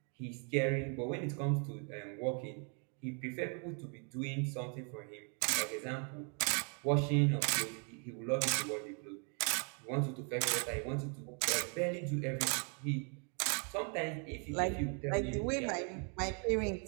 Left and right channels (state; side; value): quieter; left; 39.4 dB